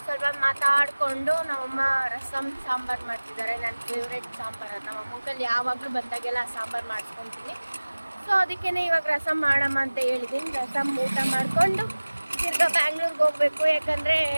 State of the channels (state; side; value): inverted; both; correlation -1.00